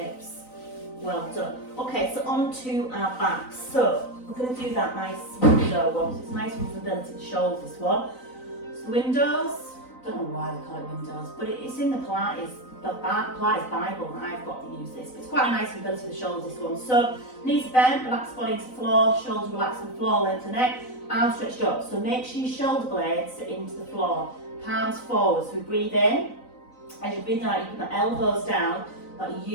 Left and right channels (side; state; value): right; late; 3.9 ms